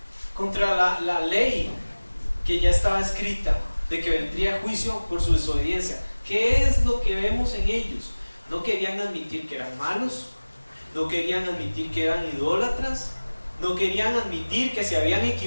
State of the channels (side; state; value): both; inverted; correlation -1.00